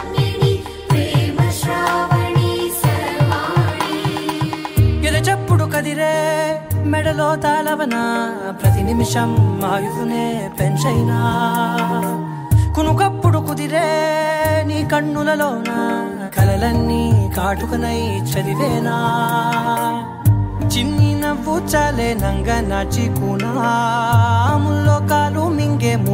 మెడలో తాళవన ప్రతి నిమిషం ఆయుధునే పెంచైనా కునుకప్పుడు కుదిరే నీ కన్నులలోన కలలన్నీ కాటుకనై చదివేనా చిన్ని నవ్వు చాలే నంగ నాచి కూనాముల్లో కాలు మింగే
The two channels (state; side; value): identical; both; correlation 1.00